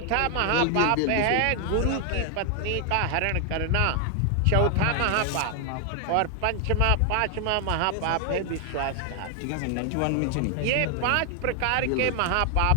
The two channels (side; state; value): both; different; correlation 0.00